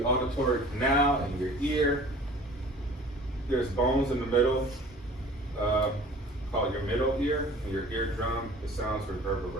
auditory canal in your ear. There's bones in the middle, called your middle ear, and your eardrum. The sounds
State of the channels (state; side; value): normal; both; correlation 0.46